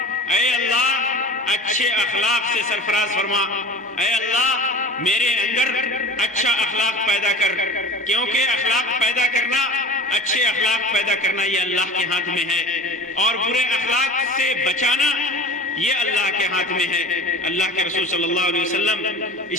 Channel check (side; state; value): both; normal; correlation 0.37